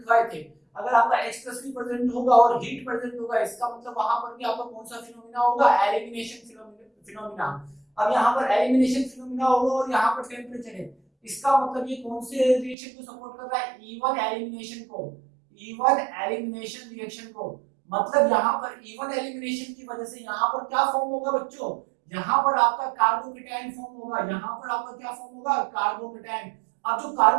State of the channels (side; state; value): left; drops out; at 12.8 s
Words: थे। अगर आपका H+ भी प्रेजेंट होगा और हीट प्रेजेंट होगा, इसका मतलब वहां पर भी आपका कौन सा फिनोमेना होगा, एलिमिनेशन फिनोमेना। अब यहाँ पर एलिमिनेशन फिनोमेना होगा और यहाँ पर टेम्परेचर है, इसका मतलब ये कौन से रिएक्शन को सपोर्ट कर रहा है, E1 एलिमिनेशन को, E1 एलिमिनेशन रिएक्शन को। मतलब यहाँ पर E1 एलिमिनेशन की वजह से यहाँ पर क्या फॉर्म होगा बच्चों, यहाँ पर आपका कार्बोकेटायन फॉर्म होगा। यहाँ पर आपका क्या फॉर्म होगा, कार्बोकेटायन। अब जो